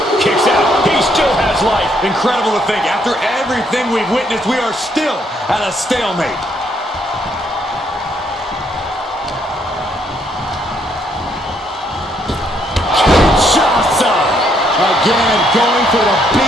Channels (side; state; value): both; normal; correlation 0.71